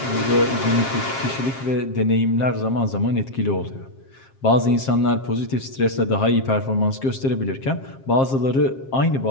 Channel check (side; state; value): right; late; 7.5 ms